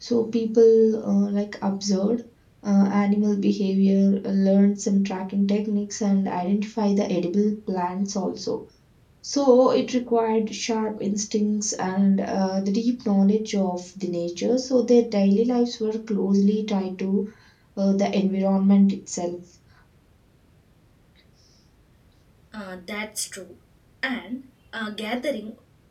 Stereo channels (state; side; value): identical; both; correlation 1.00